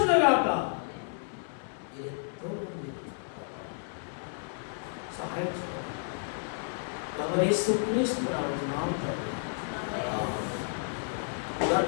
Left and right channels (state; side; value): silent; right; 57 dB below the other